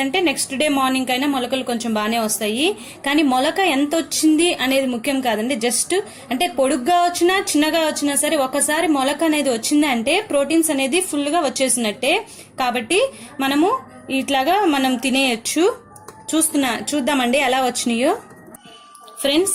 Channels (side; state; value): both; identical; correlation 1.00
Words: నెక్స్ట్ డే మార్నింగ్ అయినా మొలకలు కొంచెం బాగానే వస్తాయి. కానీ మొలక ఎంత వచ్చింది అనేది ముఖ్యం కాదండి. జస్ట్ అంటే పొడుగ్గా వచ్చినా చిన్నగా వచ్చినా సరే ఒకసారి మొలక అనేది వచ్చింది అంటే ప్రోటీన్స్ అనేది ఫుల్ గా వచ్చేసినట్టే. కాబట్టి మనము ఇట్లాగా మనం తినేయచ్చు. చూద్దామండి ఎలా వచ్చినాయో.